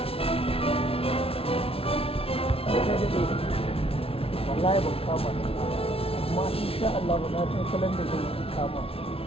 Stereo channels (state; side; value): late; right; 0.27 ms